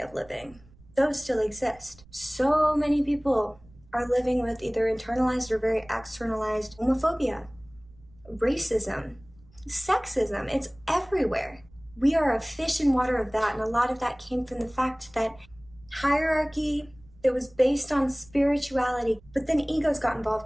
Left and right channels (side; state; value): right; noise; rumble, 25 dB below the sound